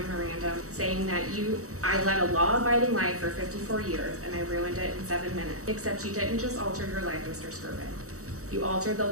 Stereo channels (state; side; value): late; left; 0.65 ms